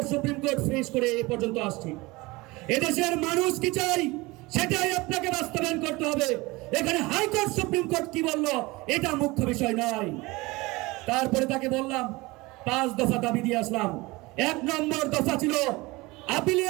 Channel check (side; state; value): left; quieter; 22.5 dB